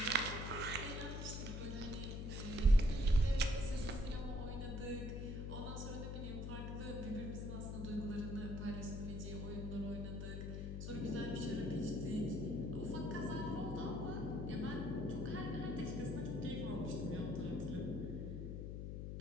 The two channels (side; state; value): left; noise; hum, 4 dB below the sound